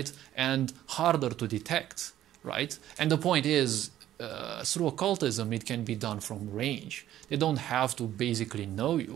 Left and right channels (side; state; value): left; quieter; 12.6 dB